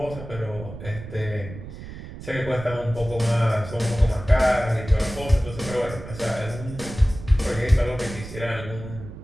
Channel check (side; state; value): right; noise; rumble, 12 dB below the sound